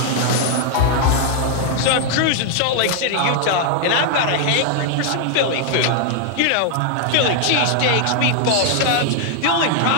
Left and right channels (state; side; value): different; both; correlation 0.00